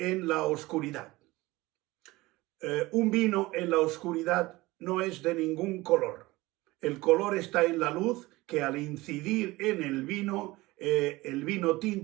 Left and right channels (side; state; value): left; quieter; 20.2 dB